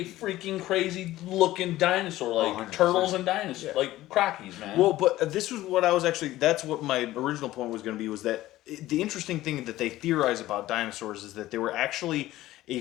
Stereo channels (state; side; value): quieter; right; 15.8 dB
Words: freaking crazy looking dinosaur, like 100%. turtles and dinosaurs, like crockies, man. Well, but this was what I was actually. That's what my original point was going to be. Was that the interesting thing that they theorize about dinosaurs is that they were actually a